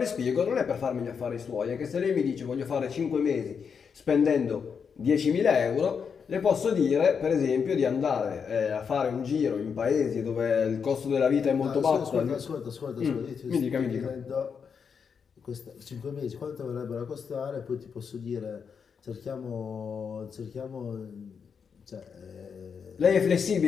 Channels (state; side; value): quieter; right; 6.4 dB